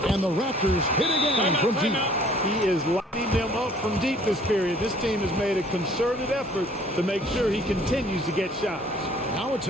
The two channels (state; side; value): normal; both; correlation 0.56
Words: and the Raptors hit again from deep. He is lighting them up from deep this period. This team has made a concerted effort to make sure he continues to get shots. Now a